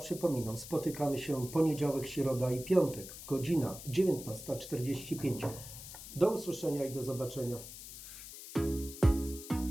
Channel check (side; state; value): left; noise; hiss, 12 dB below the sound